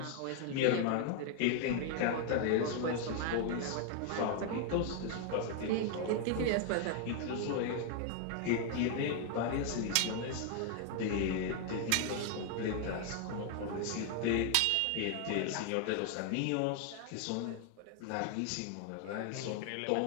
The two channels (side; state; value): both; different; correlation 0.00